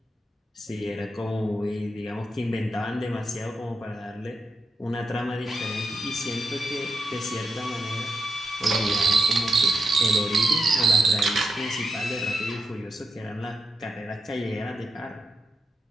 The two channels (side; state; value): both; normal; correlation 0.83